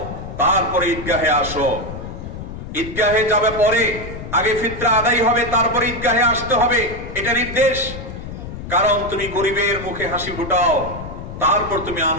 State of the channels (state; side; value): noise; left; rumble, 10 dB below the sound